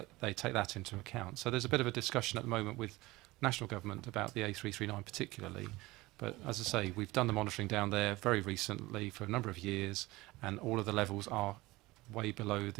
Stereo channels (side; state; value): left; quieter; 20.2 dB